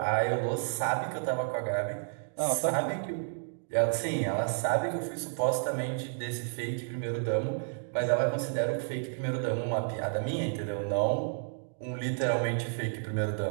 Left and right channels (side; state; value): left; silent; digital silence